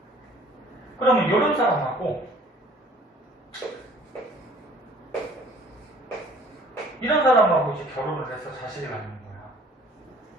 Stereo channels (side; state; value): both; normal; correlation 0.53